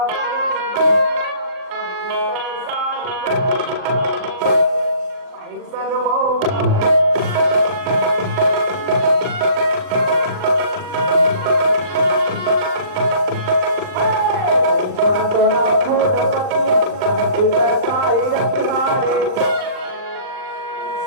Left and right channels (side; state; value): left; late; 39 ms